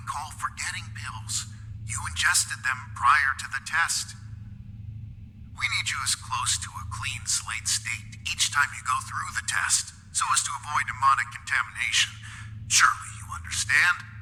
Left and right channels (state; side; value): identical; both; correlation 1.00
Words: call forgetting pills. You ingested them prior to the test. We need you as close to a clean slate state each time you go through the test, so as to avoid demonic contamination. Surely you understand?